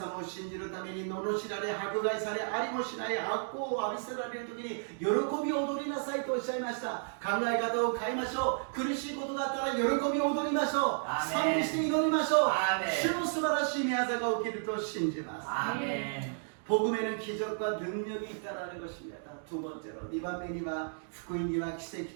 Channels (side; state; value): left; silent; digital silence